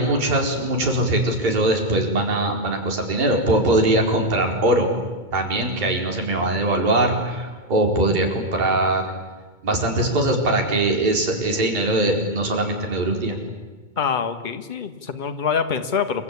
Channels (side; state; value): left; late; 2.2 ms